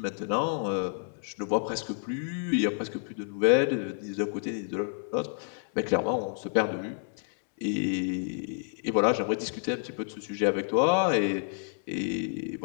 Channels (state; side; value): silent; right; 58 dB below the other